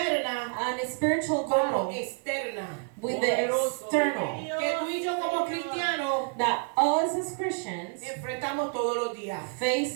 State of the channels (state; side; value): quieter; left; 38.2 dB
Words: and a spiritual como battle externa. with the external Que tú y yo como cristianos that us as Christians enfrentamos todos los días. face